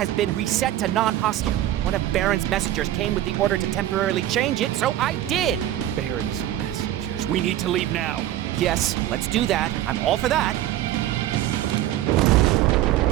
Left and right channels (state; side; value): quieter; left; 13.3 dB